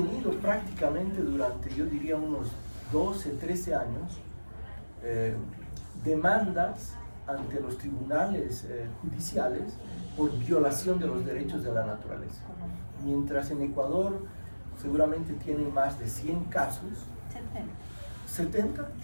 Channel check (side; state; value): both; inverted; correlation -1.00